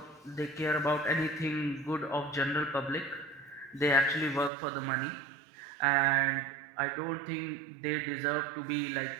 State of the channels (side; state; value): left; drops out; at 4.5 s